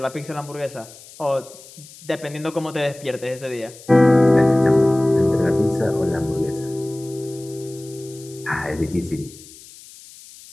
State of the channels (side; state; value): left; noise; hiss, 20 dB below the sound